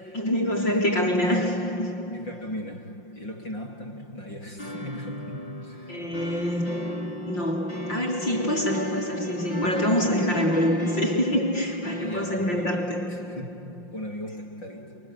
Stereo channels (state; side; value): late; right; 5.7 ms